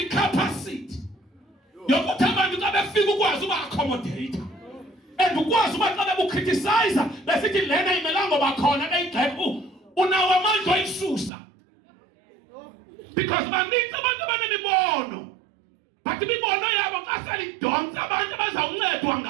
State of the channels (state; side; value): drops out; left; at 11.3 s